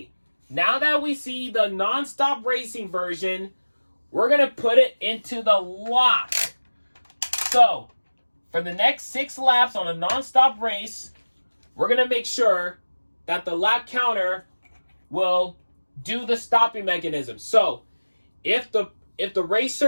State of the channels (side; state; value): both; inverted; correlation -1.00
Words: now that we see the non-stop racing version, we're going to put it into the lock. So, for the next 6 laps on a non-stop race, we're going to make sure that the lap counter will do the stopping mechanism. So, if the